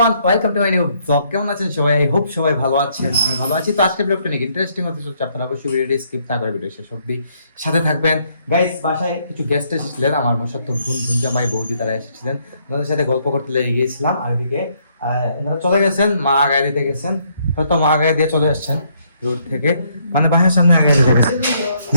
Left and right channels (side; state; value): both; inverted; correlation -0.70